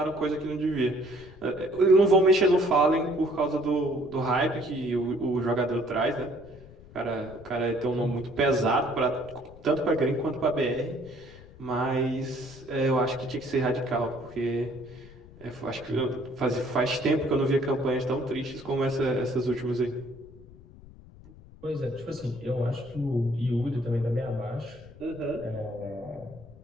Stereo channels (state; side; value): noise; left; rumble, 20 dB below the sound